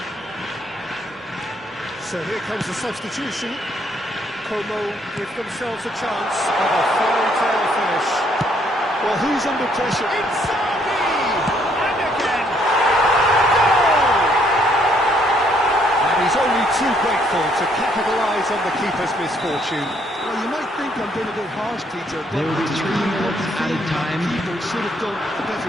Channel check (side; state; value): both; normal; correlation 0.68